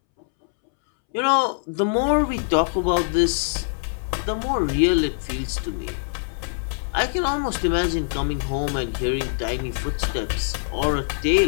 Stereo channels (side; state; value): right; silent; 63 dB below the other